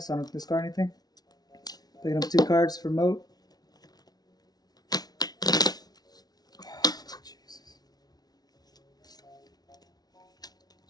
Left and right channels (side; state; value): right; late; 0.19 ms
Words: I don't have to discard anything. Picking up 2 cards for moat. Jesus.